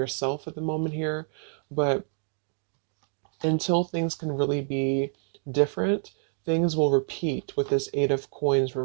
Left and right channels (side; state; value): left; silent; digital silence